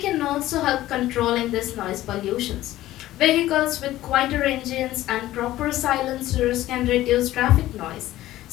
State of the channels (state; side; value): quieter; right; 15.1 dB